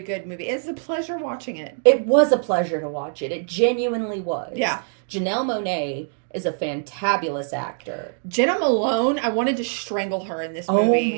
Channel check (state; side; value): silent; left; 63 dB below the other